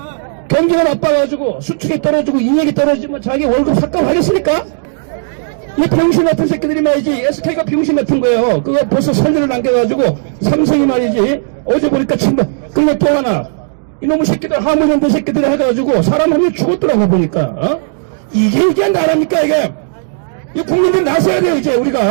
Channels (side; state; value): left; silent; digital silence